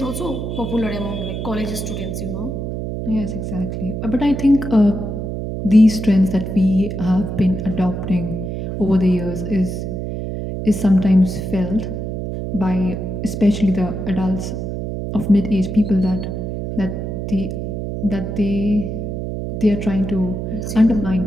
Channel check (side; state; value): right; noise; hum, 4 dB below the sound